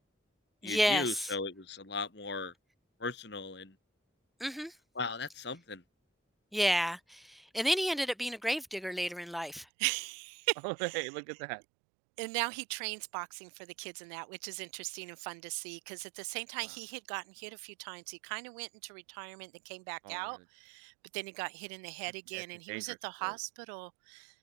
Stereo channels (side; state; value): left; drops out; at 9.7 s